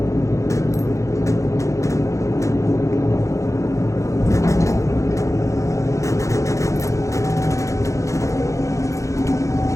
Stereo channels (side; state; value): right; late; 0.15 ms